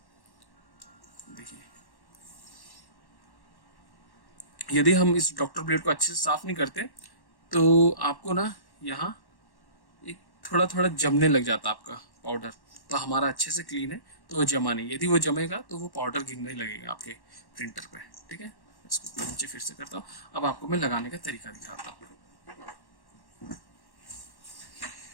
देखिए यदि हम इस डॉक्टर ब्लेड को अच्छे से साफ नहीं करते तो आपको ना यहाँ एक थोड़ा थोड़ा जमने लग जाता आपका पाउडर। तो हमारा अच्छे से क्लीन है तो वो जमा नहीं। यदि वो जमेगा तो वो पाउडर गिरने लगेगा आपके प्रिंटर पे। ठीक है, इसको नीचे फिर से करता हूँ। अब आपको मैं लगाने का तरीका दिखाता हूँ।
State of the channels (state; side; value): late; right; 1.1 ms